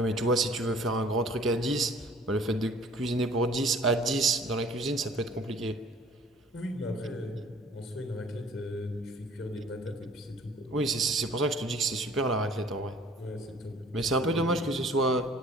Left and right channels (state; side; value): normal; both; correlation 0.52